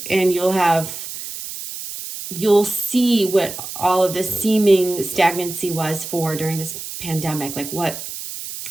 and you'll see what all of the seeming stagnancy was for during this pandemic, like what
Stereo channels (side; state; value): right; noise; hiss, 9 dB below the sound